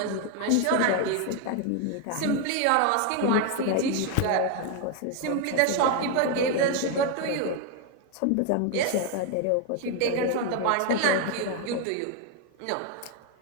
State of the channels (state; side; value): different; both; correlation 0.01